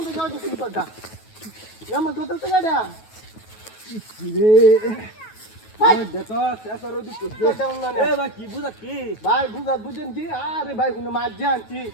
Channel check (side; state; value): right; late; 9.3 ms